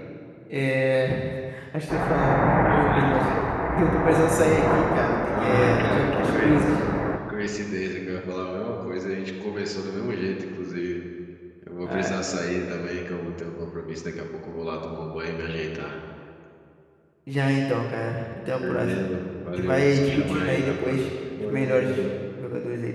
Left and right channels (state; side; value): identical; both; correlation 1.00